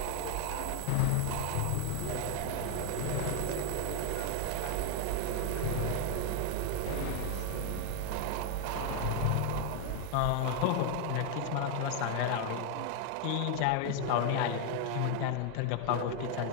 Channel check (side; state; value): both; different; correlation 0.01